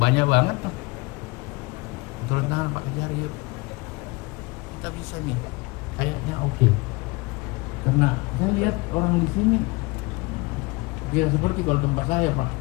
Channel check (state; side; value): quieter; right; 25.0 dB